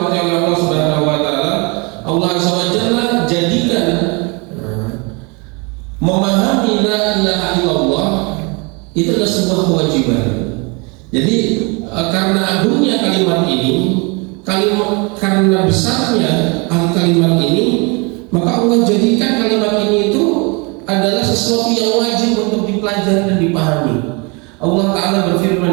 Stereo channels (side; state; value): left; quieter; 30.2 dB